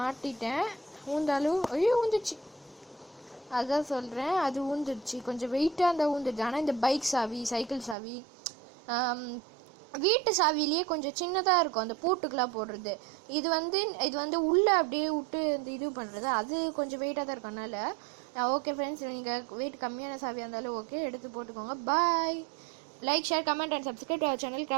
ஊந்தாலும் ஐயோ ஊந்துச்சு, அதான் சொல்கிறேன், அது ஊந்துடுச்சு. கொஞ்சம் வெயிட்டாக இருந்தால் ஊந்துடுச்சு. ஆனால் இந்த பைக் சாவி, சைக்கிள் சாவி, வீட்டு சாவிலேயே கொஞ்சம் சின்னதாக இருக்கும், அந்த பூட்டுக்கெலாம் போடுறது. இது வந்து உள்ளே அப்படியே விட்டு இந்த இது பண்ணுறது, அது கொஞ்சம் வெயிட்டாக தான் இருக்கும். அதனால் ஓகே ஃப்ரெண்ட்ஸ், நீங்கள் வெயிட் கம்மியான சாவியாக இருந்தாலும் ஓகே, எடுத்து போட்டுக்கோங்க. Bye. Like, share, comment and subscribe to our channel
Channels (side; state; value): left; drops out; at 8.0 s